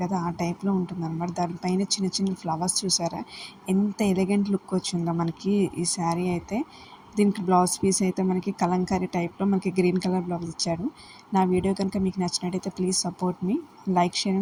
కదా, ఆ టైప్లో ఉంటుంది అనమాట. దానిపైన చిన్న చిన్న ఫ్లవర్స్ చూసారా, ఎంత ఎలిగెంట్ లుక్ వచ్చిందో మనకి ఈ శారీ అయితే. దీనికి బ్లౌజ్ పీస్ అయితే మనకి కలంకారీ టైప్లో మనకి గ్రీన్ కలర్ బ్లౌజ్ ఇచ్చాడు. నా వీడియో కనుక మీకు నచ్చినట్టయితే please support me, like, share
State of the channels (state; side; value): identical; both; correlation 1.00